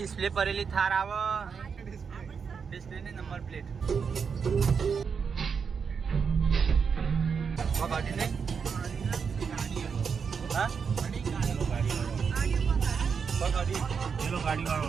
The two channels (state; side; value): quieter; left; 6.1 dB